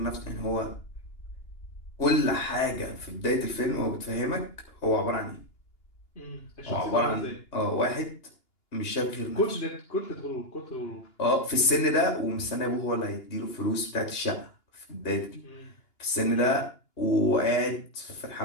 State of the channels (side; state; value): right; late; 2.9 ms